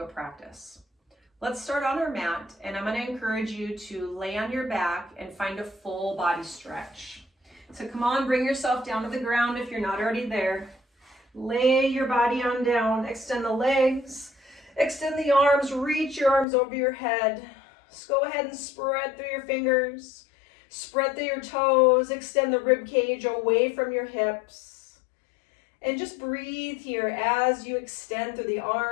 practice. Let's start on our mat, and I'm going to encourage you to lay on your back and find a full body stretch. So come on, bring yourself down to the ground if you're not already there. Lay your body on down, extend the legs, extend the arms, reach your arms over your head. Just go ahead and spread through your fingers, spread through your toes, extend the rib cage away from your hips. And just breathe here as you extend through the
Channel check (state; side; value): drops out; right; at 16.4 s